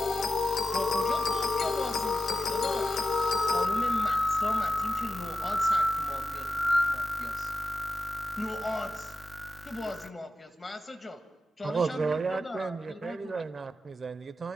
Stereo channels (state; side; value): normal; both; correlation 0.92